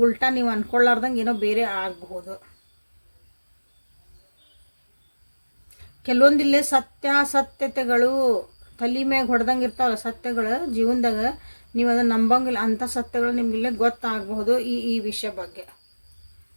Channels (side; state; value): both; inverted; correlation -1.00